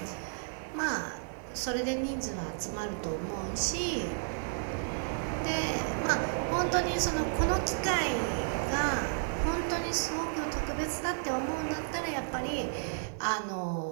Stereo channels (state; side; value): silent; left; digital silence